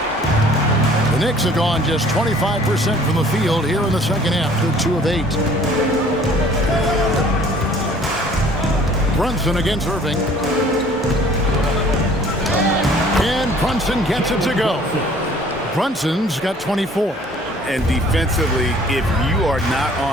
The Knicks have gone just 25% from the field here in the second half. They're 2 of 8. Brunson against Irving. And Brunson gets it to go. Brunson's got 24. And defensively, if you are not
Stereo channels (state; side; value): normal; both; correlation 0.54